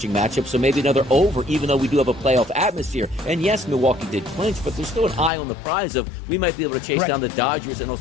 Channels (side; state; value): right; drops out; at 5.3 s